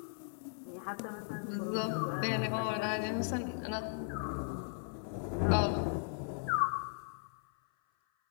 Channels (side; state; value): right; silent; 53 dB below the other